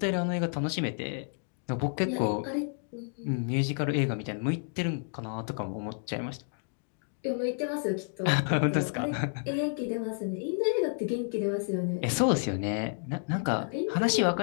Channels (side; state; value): right; silent; 58 dB below the other